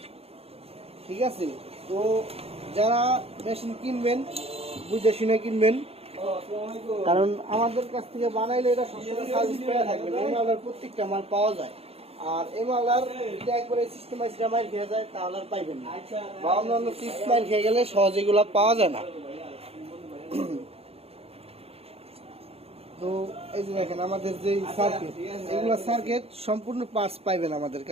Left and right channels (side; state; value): left; late; 0.29 ms